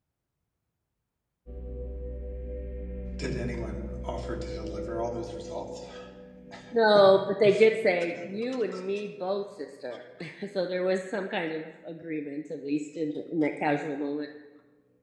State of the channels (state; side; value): identical; both; correlation 1.00